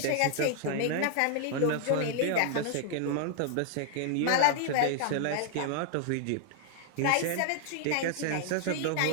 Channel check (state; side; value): different; both; correlation 0.00